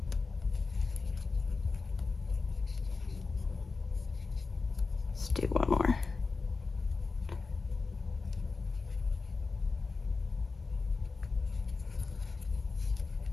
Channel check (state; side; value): quieter; right; 4.2 dB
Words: Let's do one more.